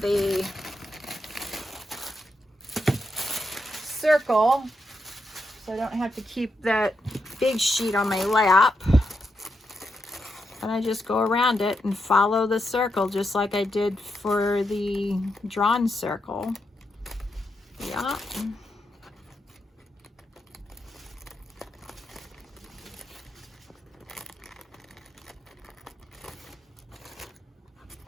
circle so I don't have to keep that big sheet on my lap. And I just go around it and follow the circle just like I did for the drawn circle. Yeah.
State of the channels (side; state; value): both; normal; correlation 0.84